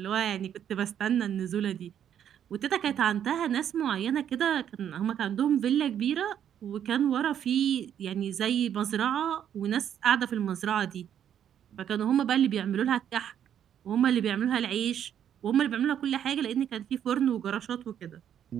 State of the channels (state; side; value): quieter; left; 9.5 dB